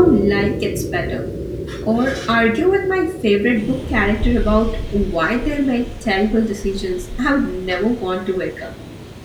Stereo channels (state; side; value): identical; both; correlation 1.00